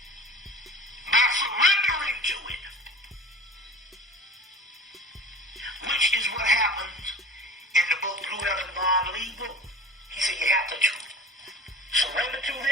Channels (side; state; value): both; normal; correlation 0.38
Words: by surrendering to it, which is what happens in the book Blue Heaven Bond League book. He said you have to surrender to